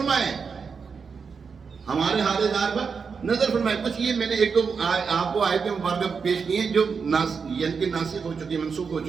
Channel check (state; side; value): quieter; left; 5.6 dB